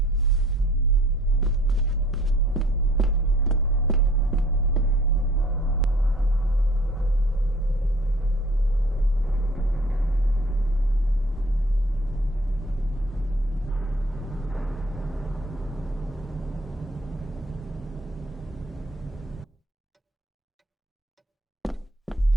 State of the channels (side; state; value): both; normal; correlation 0.53